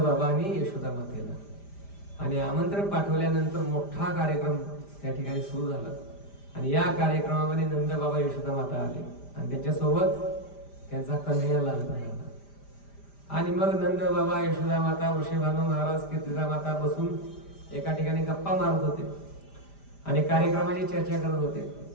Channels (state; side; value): late; right; 5.0 ms